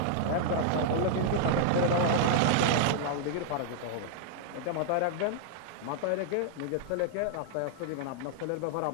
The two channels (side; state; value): both; different; correlation -0.01